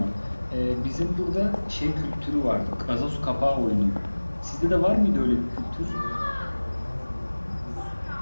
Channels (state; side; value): inverted; both; correlation -1.00